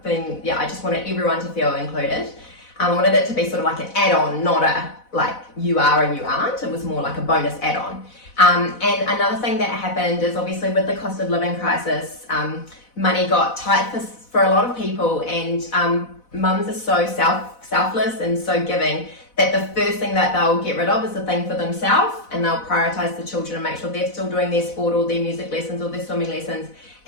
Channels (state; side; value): late; right; 4.0 ms